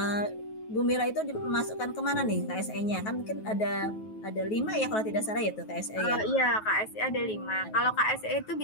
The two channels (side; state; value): right; late; 9.3 ms